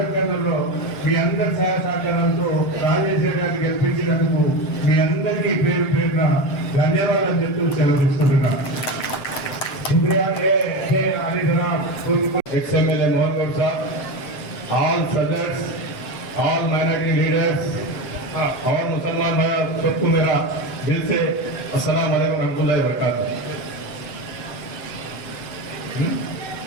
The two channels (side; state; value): right; late; 6.6 ms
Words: కర్నూలులో మీ అందరి సహాయ సహకారాలతో రాజేశ్వర గారిని గెలిపించినందుకు మీ అందరికీ పేరు పేరున ధన్యవాదాలు చెప్తూ సెలవు తీసుకుంటున్నాను. शुक्रिया अली जनाब XMLA मोहन गौर साहब, ऑल सदर्स, ऑल माइनॉरिटी लीडर्स और मुसलमान भाई सबको मेरा दिल से अस्सलाम वालेकुम रहमतुल्लाहि व बरकातहू।